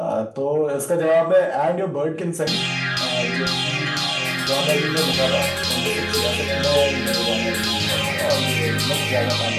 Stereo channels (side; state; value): both; identical; correlation 1.00